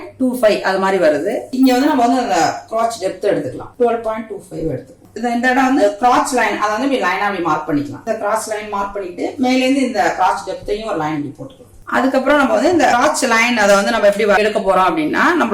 அது மாதிரி வருது. இங்க நம்ம அந்த கிராச் டெப்த் எடுத்துக்கலாம். 12.25 எடுத்துக்கலாம். இந்த இடம் கிராச் லைன் அதை இப்படி லைனா அப்படி மார்க் பண்ணிக்கலாம். இந்த கிராச் லைன் மார்க் பண்ணிட்டு மேல இருந்து இந்த கிராச் டெப்த்தையும் ஒரு லைன் இப்படி போட்டுக்கலாம். அதுக்கப்புறம் நம்ம இந்த கிராச் லைன் அதை நம்ம எப்படி எடுக்க போறோம் அப்படின்னா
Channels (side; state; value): both; identical; correlation 1.00